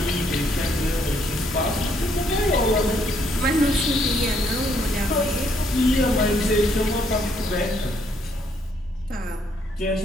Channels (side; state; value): both; normal; correlation 0.70